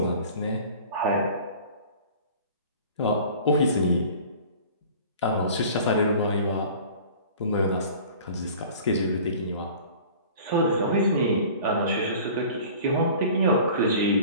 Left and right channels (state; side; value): inverted; both; correlation -0.44